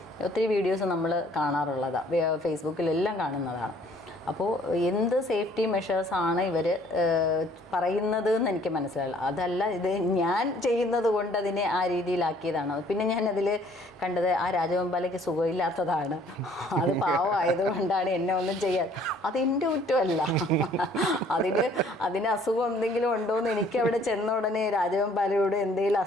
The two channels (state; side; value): normal; both; correlation 0.59